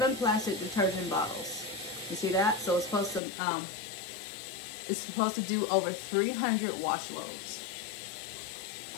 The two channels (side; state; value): right; drops out; at 3.2 s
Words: plastic detergent bottles. You see that? So it's supposed to do over 300 wash loads.